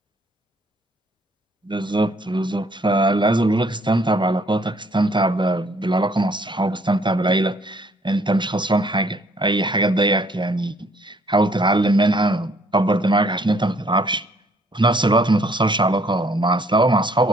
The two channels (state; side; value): normal; both; correlation 0.63